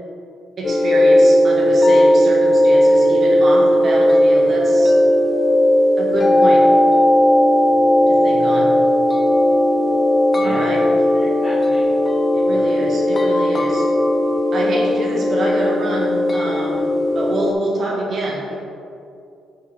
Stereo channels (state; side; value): normal; both; correlation 0.94